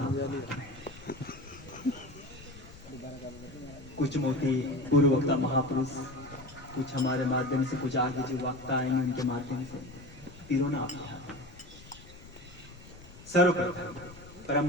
कुछ मोती पूर्व वक्ता महापुरुष, कुछ हमारे माध्यम से, कुछ आगे जो वक्ता आएंगे उनके माध्यम से पिरोना आप सर्वप्रथम परम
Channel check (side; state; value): left; noise; rumble, 19 dB below the sound